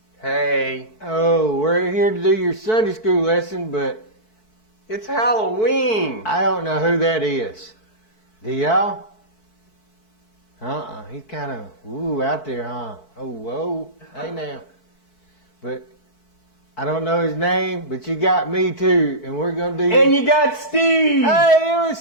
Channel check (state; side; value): late; right; 4.6 ms